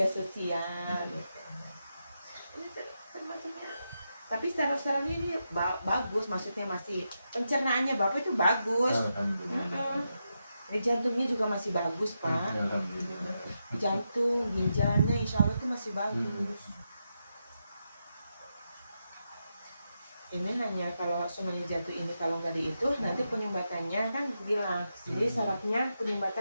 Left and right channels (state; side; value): inverted; both; correlation -0.86